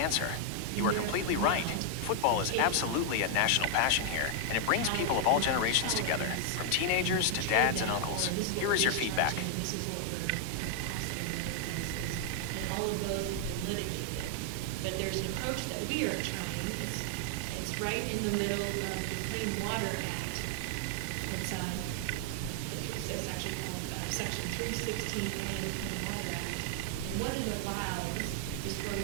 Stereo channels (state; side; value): different; both; correlation 0.00